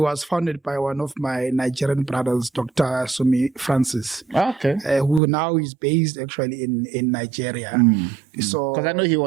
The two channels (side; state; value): left; drops out; at 5.2 s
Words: was founded by one of my Nigerian brothers, Dr. Sumi Francis, who now is based actually in Nigeria. So, because I know he